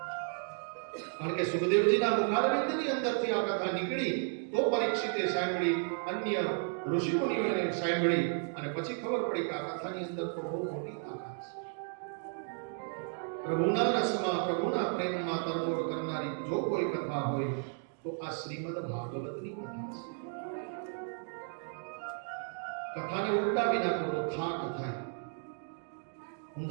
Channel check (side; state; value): left; silent; 55 dB below the other